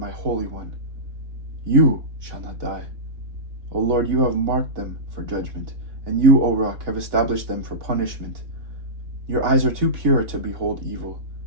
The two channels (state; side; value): late; left; 3.8 ms